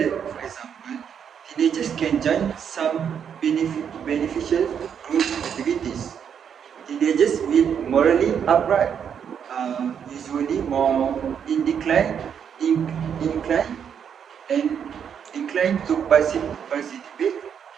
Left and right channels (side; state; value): left; quieter; 7.9 dB